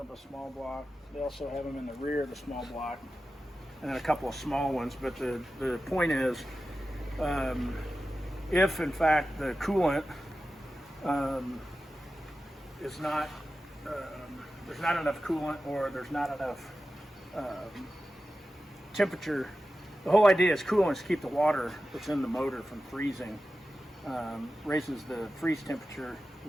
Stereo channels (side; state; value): both; normal; correlation 0.93